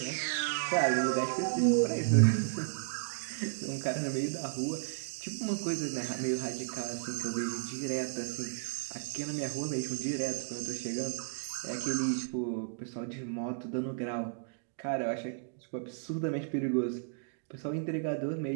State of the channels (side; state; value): left; silent; digital silence